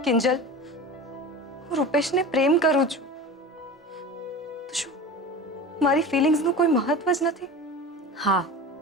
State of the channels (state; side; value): normal; both; correlation 0.33